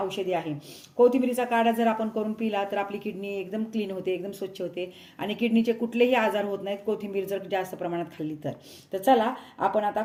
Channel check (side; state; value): both; identical; correlation 1.00